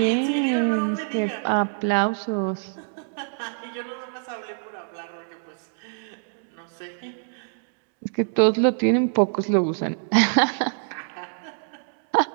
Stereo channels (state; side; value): silent; left; digital silence